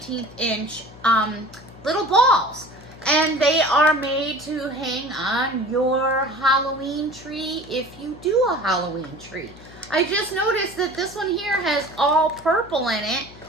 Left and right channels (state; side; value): noise; left; hum, 20 dB below the sound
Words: inch little balls. And they are made to hang on your Halloween tree if you do a Halloween tree. I just noticed that this one here has all purple in it,